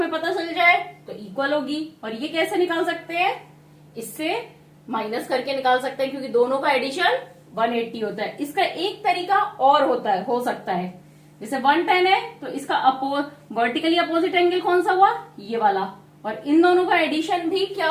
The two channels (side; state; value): both; identical; correlation 1.00